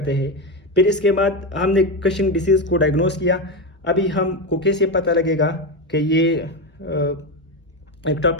हैं। फिर इसके बाद हमने कशिंग डिसीज़ को डायग्नोस किया। अभी हमको कैसे पता लगेगा कि ये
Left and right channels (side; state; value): both; normal; correlation 0.14